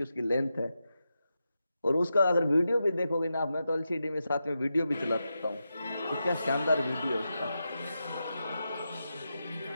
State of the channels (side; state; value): both; inverted; correlation -0.88